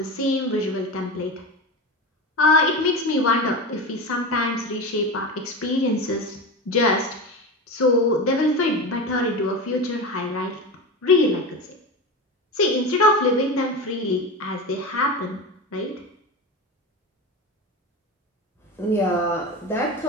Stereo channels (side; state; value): both; normal; correlation 0.24